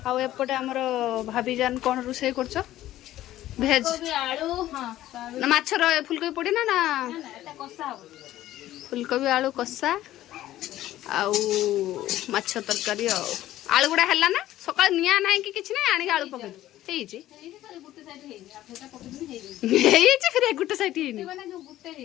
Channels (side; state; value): right; quieter; 14.2 dB